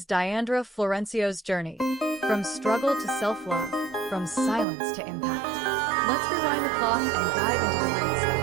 Dyandra Florencio's journey, from struggle to self-love, from silence to impact. Let's rewind the clock and dive into the roots of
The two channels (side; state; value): left; drops out; at 4.7 s